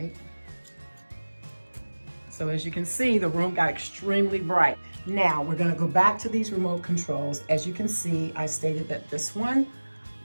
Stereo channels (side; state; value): both; inverted; correlation -1.00